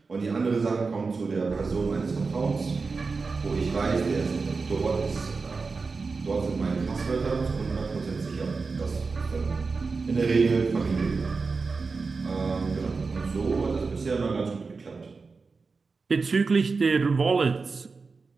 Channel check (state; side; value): quieter; left; 4.4 dB